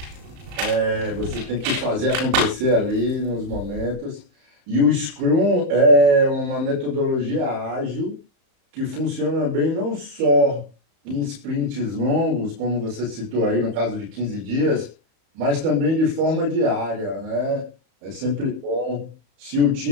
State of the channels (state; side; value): late; left; 35 ms